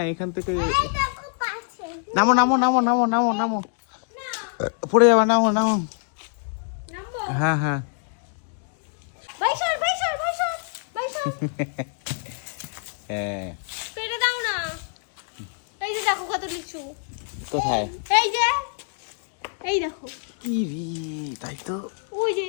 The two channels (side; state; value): right; silent; 62 dB below the other